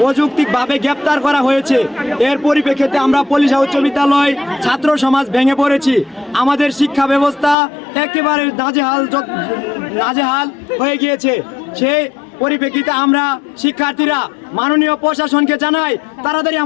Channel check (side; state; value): right; drops out; at 7.6 s